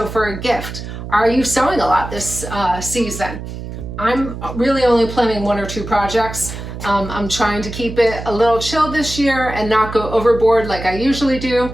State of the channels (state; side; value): noise; right; hum, 9 dB below the sound